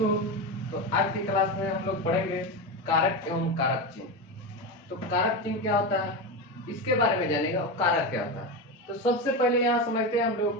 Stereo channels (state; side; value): normal; both; correlation 0.17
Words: तो आज की क्लास में हम लोग पढ़ेंगे कारक एवं कारक चिन्ह। तो कारक चिन्ह क्या होता है इसके बारे में जानेगा और कारक क्या होता है। तो सबसे पहले यहाँ समझते हैं हम